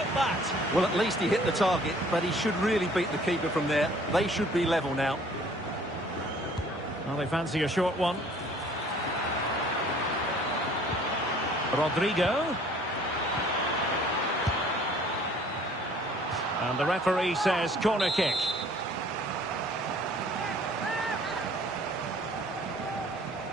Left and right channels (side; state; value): both; normal; correlation 0.54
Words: that? Well, at least he hit the target, but he should really beat the keeper from there. They should be level now. Well, they fancy a short one. Rodrigo. And the referee says corner kick.